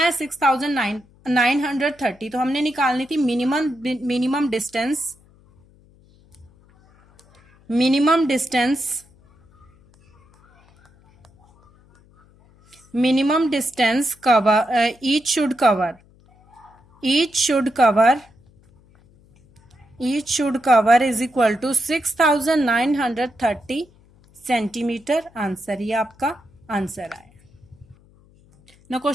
6930। तो हमने निकालनी थी minimum distance cover, each should cover is equal to 6930 centimetre. Answer, ये आपका आंसर आया। Now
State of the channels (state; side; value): noise; left; hum, 30 dB below the sound